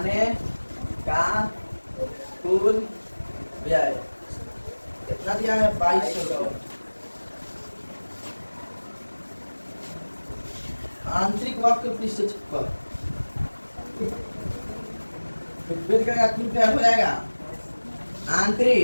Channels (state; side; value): inverted; both; correlation -1.00